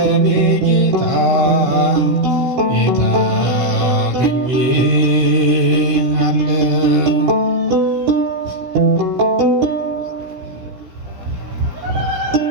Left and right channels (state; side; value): late; left; 16 ms